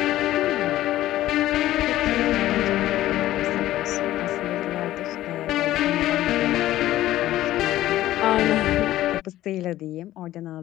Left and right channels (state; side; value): quieter; right; 14.5 dB